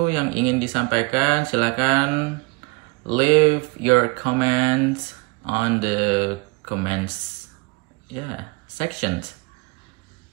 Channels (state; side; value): quieter; left; 27.6 dB